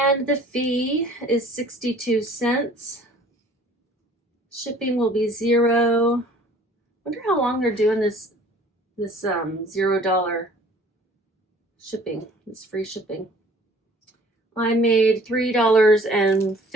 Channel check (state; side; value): normal; both; correlation 0.52